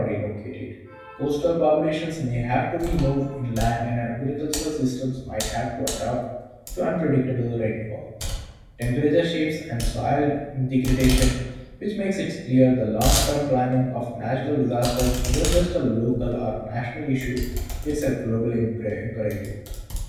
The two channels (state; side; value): identical; both; correlation 1.00